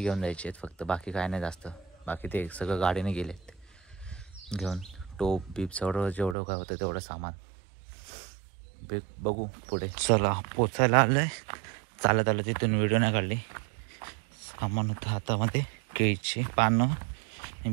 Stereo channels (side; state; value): left; drops out; at 6.4 s